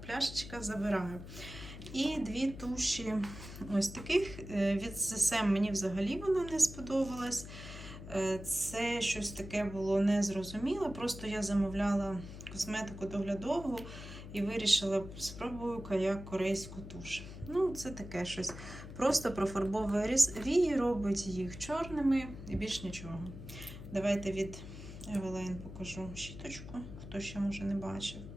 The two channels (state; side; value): noise; left; hum, 12 dB below the sound